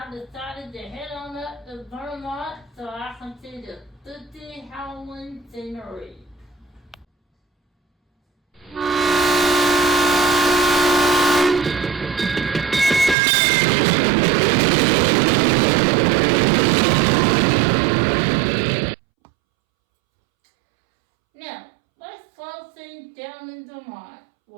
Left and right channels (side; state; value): left; drops out; at 13.2 s